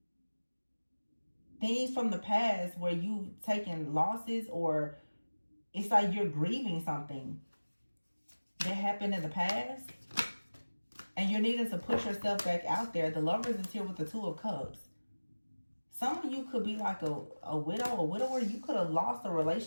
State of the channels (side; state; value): both; inverted; correlation -1.00